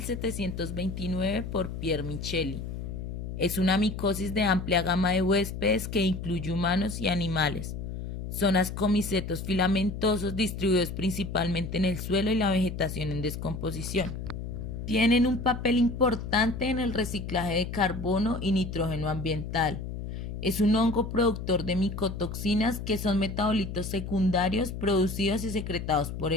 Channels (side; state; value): left; noise; hum, 7 dB below the sound